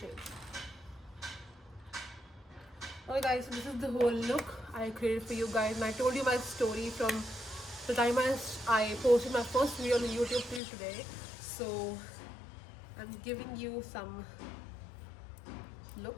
Okay guys, so this is the whole look I created for you guys, and I told you my story from the time I posted my first video on YouTube till today. So I'm giving you some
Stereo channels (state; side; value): drops out; right; at 10.6 s